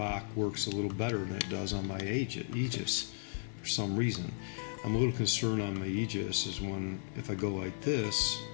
works a little better than it does on my Aegis for some reason. I'm a little concerned on my Aegis is if I go like this,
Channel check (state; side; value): silent; right; digital silence